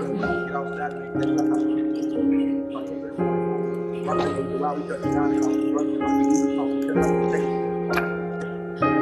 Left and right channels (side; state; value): both; identical; correlation 1.00